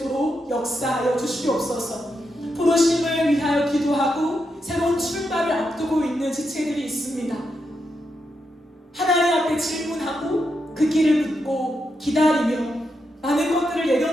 역사하여 주시옵소서. 부르심을 위하여 기도하고 새로운 출발을 앞두고 있는 지체들이 있습니다. 하나님 앞에 질문하고 그 길을 묻고 기다리며 많은 것들을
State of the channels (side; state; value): both; normal; correlation 0.84